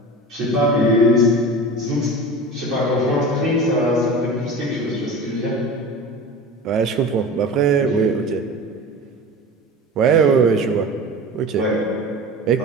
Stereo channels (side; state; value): both; normal; correlation 0.33